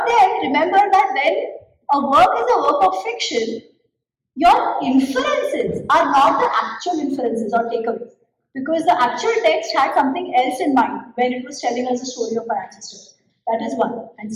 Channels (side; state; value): both; identical; correlation 1.00